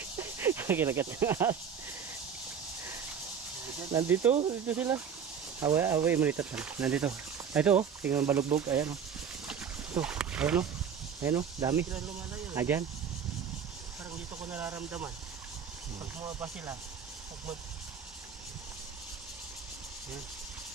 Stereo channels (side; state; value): left; quieter; 7.2 dB